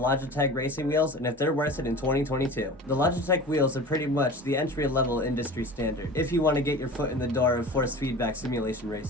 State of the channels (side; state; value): both; normal; correlation 0.36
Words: Logitech racing wheels and if they're worth it in 2022. The Logitech wheels are pretty much the entry-level industry standard if you want to get your foot in the door of force feedback simulation